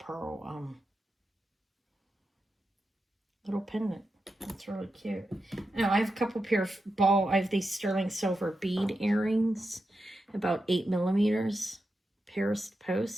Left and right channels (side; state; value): both; normal; correlation 0.89